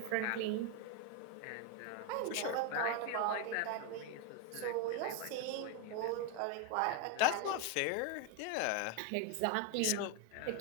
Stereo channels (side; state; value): both; different; correlation 0.02